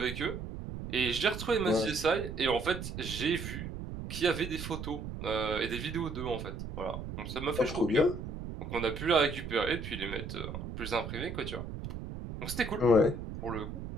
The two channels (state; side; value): noise; right; rumble, 7 dB below the sound